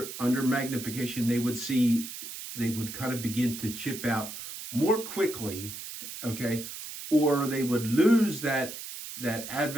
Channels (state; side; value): noise; right; hiss, 10 dB below the sound